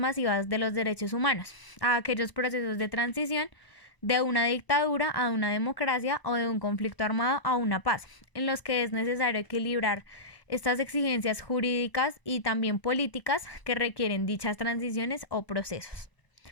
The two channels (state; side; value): late; right; 1.0 ms